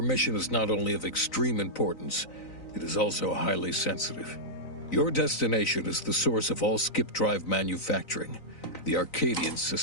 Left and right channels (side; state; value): right; late; 3.9 ms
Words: mission is not only of extreme importance, it is also highly sensitive. Your destination is the source of all skip drive manufacturing, the Arcadian